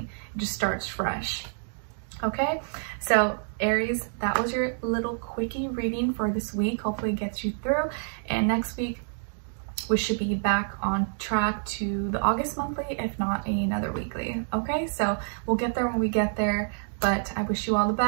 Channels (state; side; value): silent; left; digital silence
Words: It just starts fresh. Okay, so Aries, that was your little quickie reading for this week. Hopefully it gets you through, and next week we should be back on track to the August monthly, if not another weekly. Okay, so we'll get there when we get there, but I wish you all the